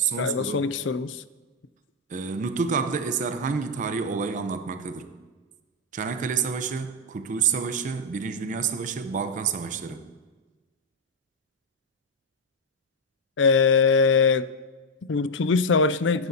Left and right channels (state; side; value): normal; both; correlation 0.02